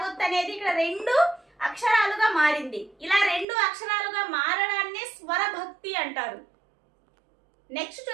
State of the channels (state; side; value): drops out; left; at 3.5 s